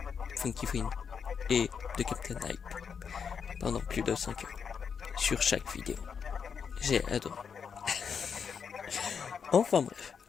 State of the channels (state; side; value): quieter; right; 6.6 dB